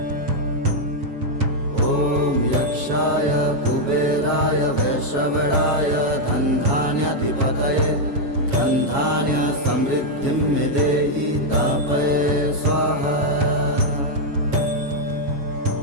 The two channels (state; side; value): late; left; 7.2 ms